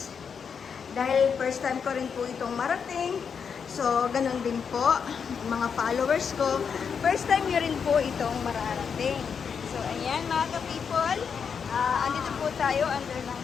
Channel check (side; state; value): right; quieter; 6.5 dB